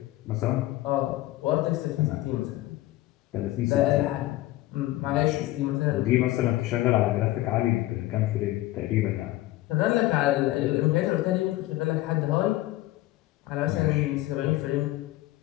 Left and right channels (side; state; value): right; quieter; 16.8 dB